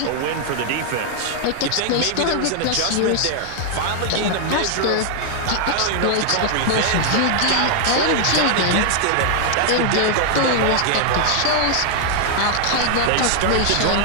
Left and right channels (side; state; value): both; different; correlation 0.00